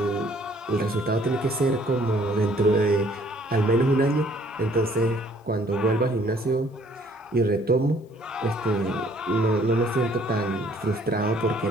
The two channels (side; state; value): both; normal; correlation 0.60